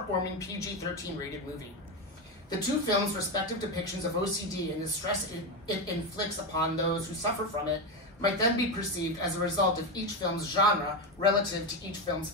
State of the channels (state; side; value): normal; both; correlation 0.13